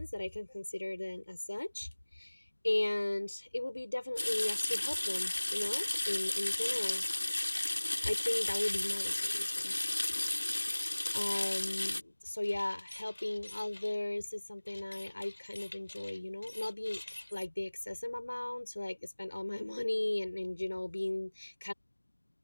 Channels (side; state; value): both; inverted; correlation -1.00